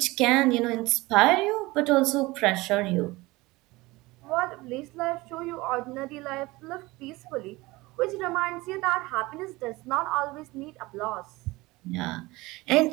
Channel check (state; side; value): quieter; left; 21.3 dB